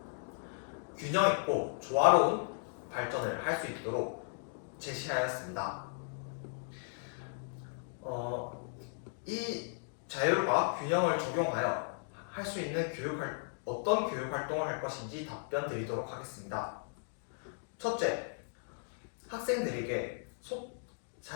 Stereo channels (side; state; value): right; silent; digital silence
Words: 균형 있고 조화로운 발전을 할 수 있도록 제시하였습니다. 이 자율과 균형을 적용하여 할 수 있는 어떤 교육 활동을 할 것인지 답변 드리도록 하겠습니다. 첫째, 학생들이